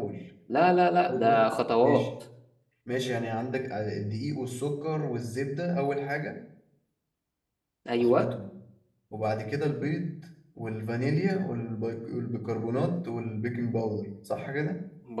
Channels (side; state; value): both; identical; correlation 1.00